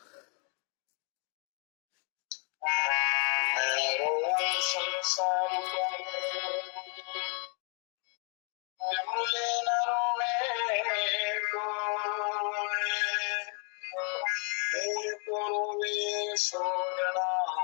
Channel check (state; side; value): quieter; right; 38.4 dB